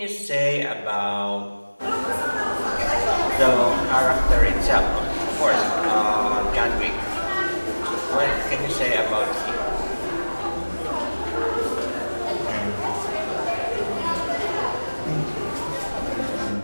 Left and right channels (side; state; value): both; inverted; correlation -1.00